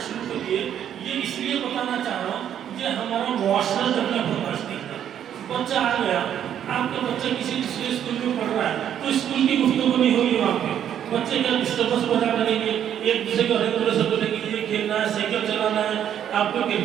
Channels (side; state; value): left; quieter; 9.8 dB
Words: شروع کریے۔ یہ اس لیے بتانا چاہ رہا ہوں یہ ہمارا معاشرہ ڈیولپمنٹ ہے۔ بچہ آ گیا، آپ کا بچہ کسی دوسرے اسکول میں پڑھ رہا ہے تو اسکول کی گفتگو نہیں ہوگی وہاں پہ، بچے کا ڈسٹربنس پیدا کریں گے، ایک دوسرے کو ہر طرح سے بولیں گے یہ کھیلنا ہے، سائیکل چلانا ہے، آپ کو